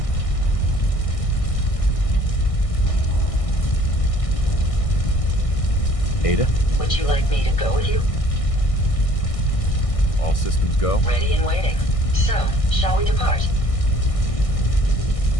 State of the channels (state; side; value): late; right; 1.6 ms